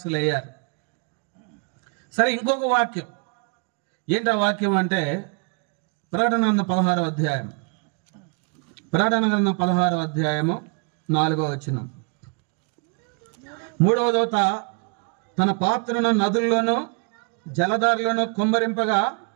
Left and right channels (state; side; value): quieter; left; 37.6 dB